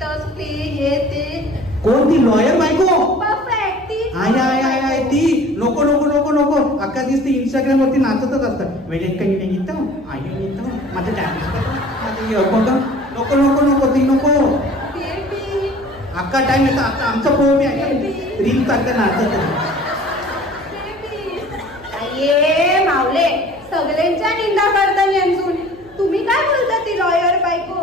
ते हे ते. कोण ती? लॉयर बायको. परफेक्ट ती. आय ती. नको नको नको नको. अख्खा दिवस ती इंस्टाग्राम वरती नाचतच असतात. वेळेत काही नाही घेतो आई येतो माझं टाइम. नको नको नको ती नको. अख्खा टाइम येतो. आता आमचं पोह बी आहे रील सारखं नाचत. ये मावले सगळ्यांच्या निंदा करता यांचून तुम्ही काय बोलता? ती लॉयर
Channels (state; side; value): noise; right; hum, 26 dB below the sound